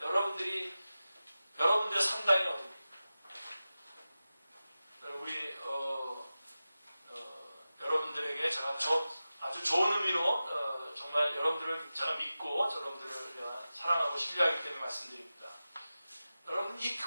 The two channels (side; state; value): both; inverted; correlation -0.94